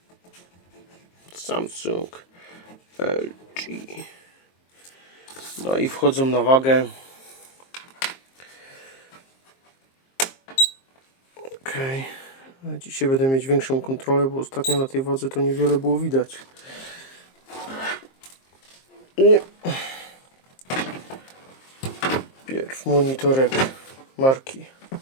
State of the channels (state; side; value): late; right; 23 ms